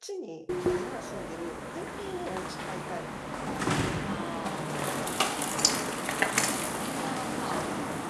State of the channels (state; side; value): identical; both; correlation 1.00